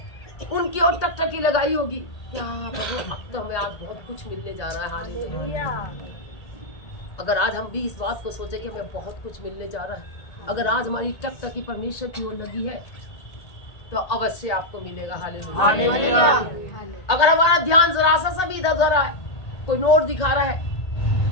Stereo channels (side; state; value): right; late; 1.8 ms